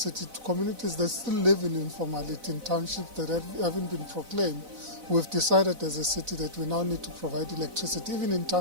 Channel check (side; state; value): left; late; 4.0 ms